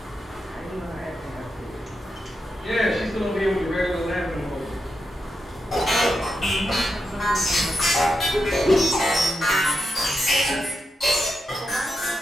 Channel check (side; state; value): both; normal; correlation 0.86